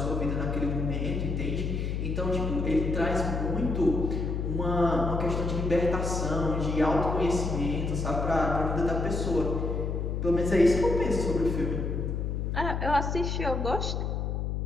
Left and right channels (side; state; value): left; noise; hum, 1 dB below the sound